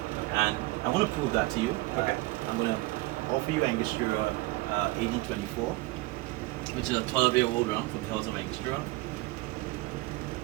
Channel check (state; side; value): quieter; left; 20.5 dB